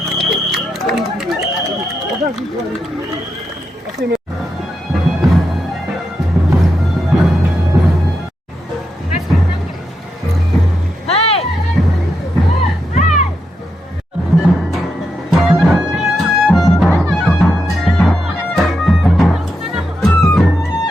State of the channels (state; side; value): normal; both; correlation 0.84